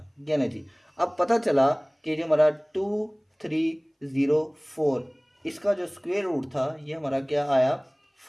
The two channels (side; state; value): both; identical; correlation 1.00